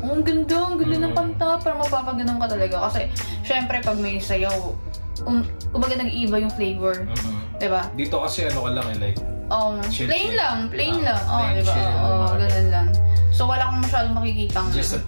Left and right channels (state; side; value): inverted; both; correlation -1.00